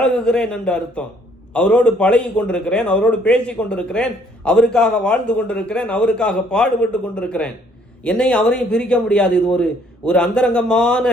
என்று அர்த்தம். அவரோடு பழகி கொண்டிருக்கிறேன், அவரோடு பேசி கொண்டிருக்கிறேன், அவருக்காக வாழ்ந்து கொண்டிருக்கிறேன், அவருக்காக பாடுபட்டு கொண்டிருக்கிறேன். என்னையும் அவரையும் பிரிக்க முடியாது. இது ஒரு அந்தரங்கமான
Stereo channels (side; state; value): both; normal; correlation 0.63